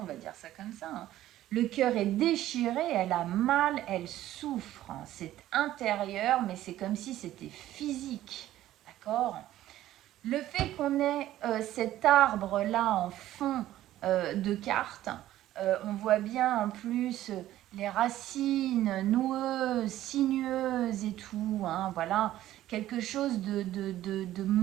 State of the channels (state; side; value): quieter; left; 13.8 dB